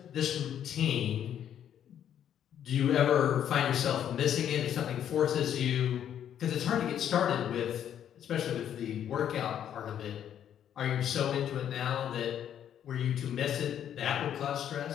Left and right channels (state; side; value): quieter; right; 9.8 dB